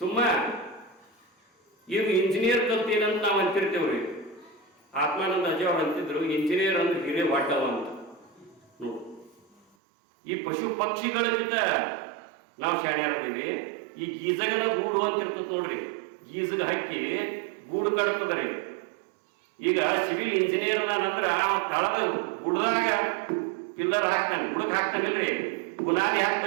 ಈಗ ಇಂಜಿನಿಯರ್ ಕಲ್ತೇನಂತ ನಾವು ಅಂತಿರ್ತೇವ್ರಿ. ಆತ್ಮಾನಂದ ಅಜ್ಜ ಅವ್ರು ಅಂತಿದ್ರು, ಇಂಜಿನಿಯರ್ ಅಂದ್ರೆ ಹಿರೇ ವಾಟವ ಅಂತ. ನೋಡು, ಈ ಪಶು ಪಕ್ಷಿಗಳಿಗಿಂತ ನಾವು ಶಾಣ್ಯರದೀವಿ. ಈ ಗೀಜಗನ ಗೂಡು ಅಂತ ಇರ್ತದೆ ನೋಡ್ರಿ, ಗೀಜಗ ಹಕ್ಕಿ ಗೂಡು ಕಟ್ತದ್ರಿ. ಈಗ ಸಿವಿಲ್ ಇಂಜಿನಿಯರ್ ನಂದ್ರ ತಳದ ಗುಡ್ದಾಗ ಪಿಲ್ಲರ್ ಹಾಕ್ತಾನೆ, ಗುಡಕ್ ಹಾಕ್ತಾನಿಲ್ರಿ, ಗುನಾದಿ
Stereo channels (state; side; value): drops out; left; at 9.6 s